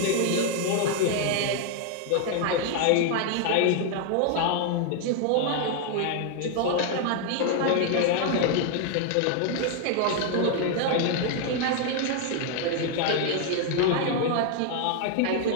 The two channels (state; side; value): different; both; correlation 0.00